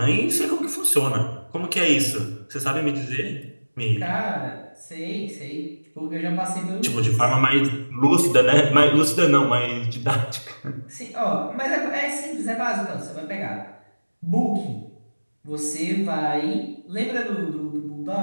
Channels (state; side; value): inverted; both; correlation -1.00